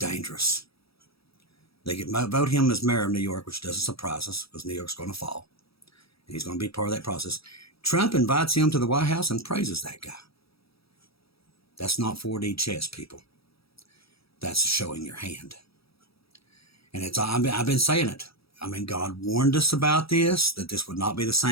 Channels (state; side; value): late; right; 0.76 ms